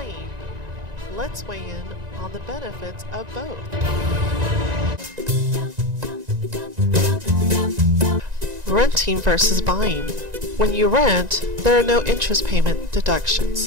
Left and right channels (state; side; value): late; left; 1.9 ms